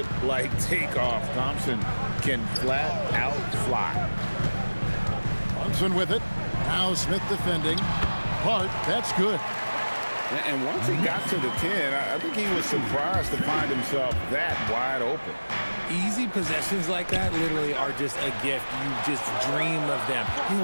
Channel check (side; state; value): both; inverted; correlation -1.00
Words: takeoff. Thompson can flat out fly. Thompson with it. Now Smith defending. Hart, that's good. And once he got to the 10, I think he was surprised to find himself that wide open. Easy possessions like that literally are just a gift. You just dream of them.